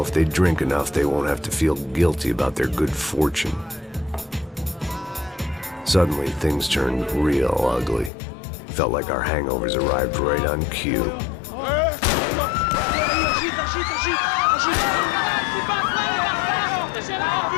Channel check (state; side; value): drops out; right; at 8.1 s